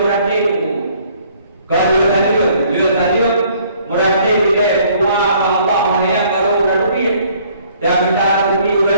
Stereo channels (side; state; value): both; inverted; correlation -0.60